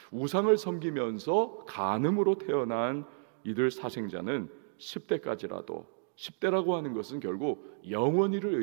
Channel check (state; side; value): silent; left; digital silence